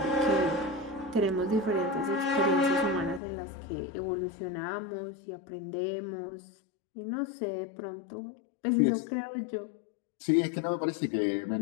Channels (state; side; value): drops out; right; at 3.2 s